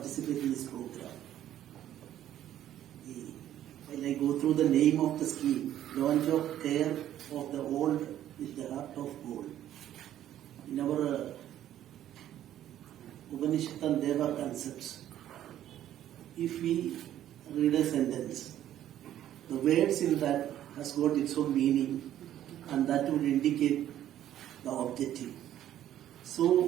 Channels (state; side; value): quieter; left; 11.8 dB